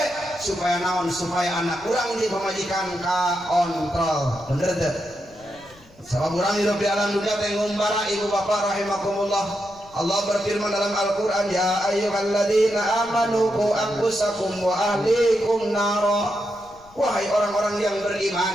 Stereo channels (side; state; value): left; noise; rumble, 26 dB below the sound